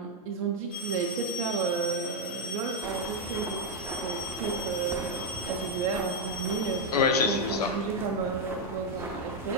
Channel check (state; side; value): normal; both; correlation 0.01